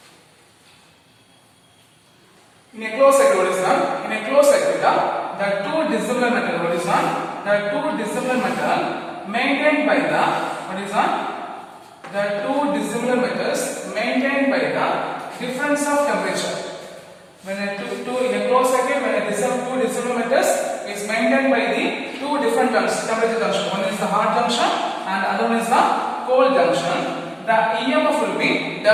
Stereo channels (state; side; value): identical; both; correlation 1.00